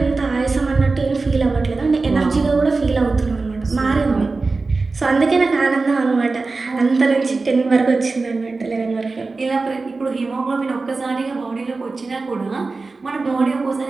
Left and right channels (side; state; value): left; quieter; 3.8 dB